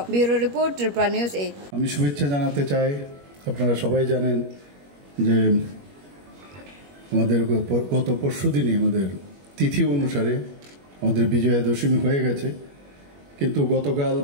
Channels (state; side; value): late; left; 21 ms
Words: Bureau Report Tripura News 8 আমি শুভেচ্ছা জানাতে চাই আপনারা সবাই জানেন যে আমাদের গত পরশুদিনই আমাদের তিথি অনুসারে আমাদের বিজয়া দশমী হয়ে গেছে কিন্তু গতকাল